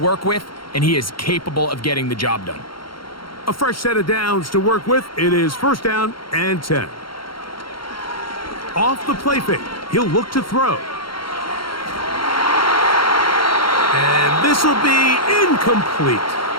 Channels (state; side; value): late; right; 0.73 ms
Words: with, and he is capable of getting the job done. A fresh set of downs to work with. It is 1st down and 10. Off the play fake, he'll look to throw. And this will be incomplete.